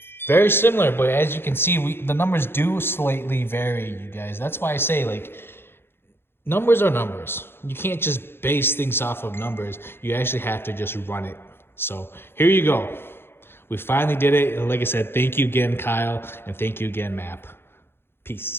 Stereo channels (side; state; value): right; late; 0.11 ms